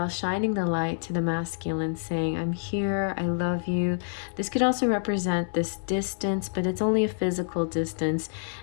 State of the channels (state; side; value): silent; right; 60 dB below the other